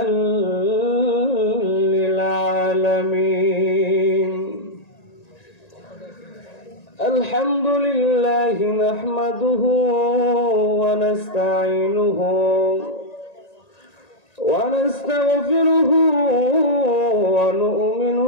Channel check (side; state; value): right; late; 1.9 ms